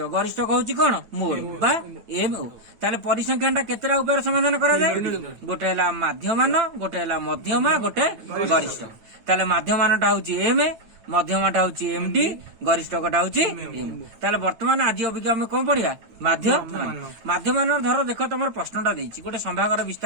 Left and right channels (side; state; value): left; late; 9.2 ms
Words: गरिष्ठ होची कौन मोड बा एम ओ ताले परिसंख्यानटा केतेटा उपाय समाधान करा जाय गोटे हला माध्यमान गोटे हला मध्यमा गोटे गरिष्ठ ताले माध्यमानटा होची एम मध्यमाटा होची एमडी गरिष्ठकटा होची एम ताले वर्तमान आज अबिका हम कोन पढिया माध्यमान माध्यमान धर देख तमर प्रश्नटा देछि गोटे संभागर